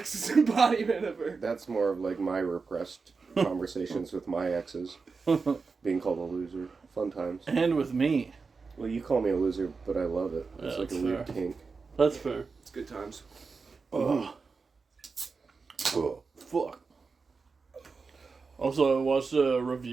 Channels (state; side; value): quieter; left; 4.7 dB